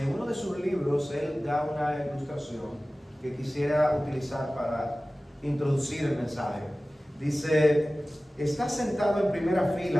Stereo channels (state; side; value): normal; both; correlation 0.97